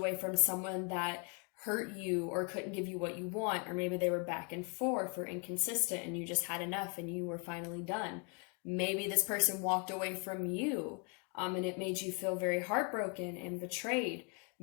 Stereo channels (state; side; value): quieter; right; 35.7 dB